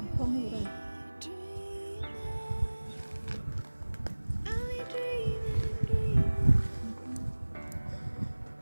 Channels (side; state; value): both; inverted; correlation -1.00